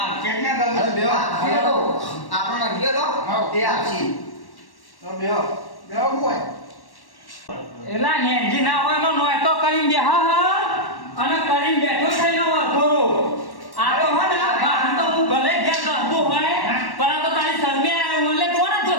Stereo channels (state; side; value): late; right; 1.1 ms